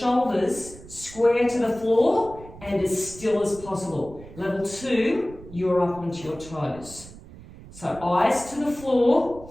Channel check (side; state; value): right; noise; rumble, 17 dB below the sound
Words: square to the floor and as still as possible. Level 2, you're up onto your toes. So eyes to the